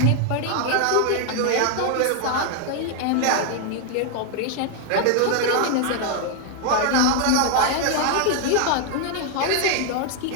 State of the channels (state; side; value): different; both; correlation 0.00